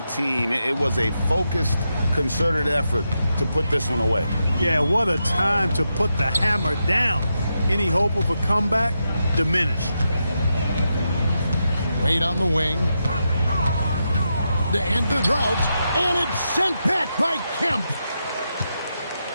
team. It was a focused, concerted effort to put this one away. Yeah, what a time to put the hammer down. Any hope of a comeback diminished. Wade on the wing. To end the drought. And it's sent back by Kemp.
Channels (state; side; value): inverted; both; correlation -0.85